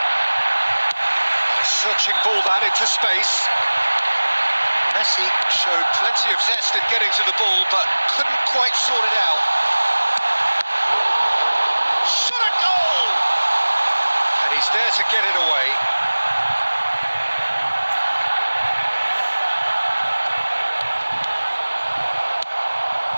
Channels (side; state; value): both; inverted; correlation -1.00